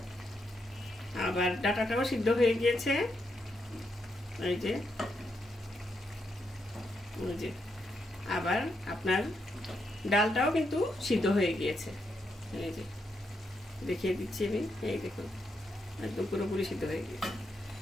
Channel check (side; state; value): both; normal; correlation 0.81